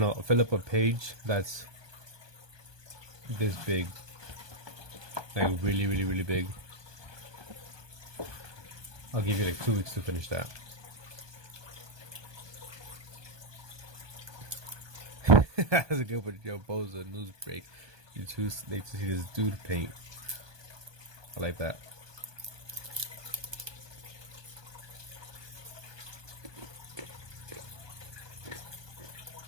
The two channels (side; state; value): left; late; 1.2 ms